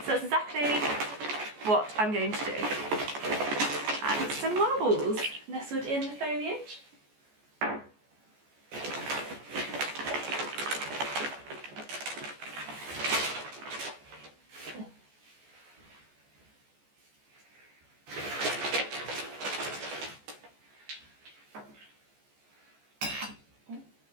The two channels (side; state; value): left; late; 14 ms